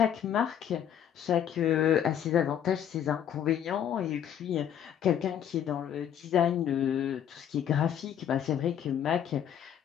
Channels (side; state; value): right; quieter; 9.6 dB